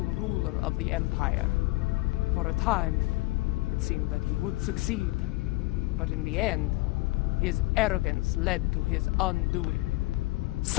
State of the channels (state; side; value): quieter; right; 21.2 dB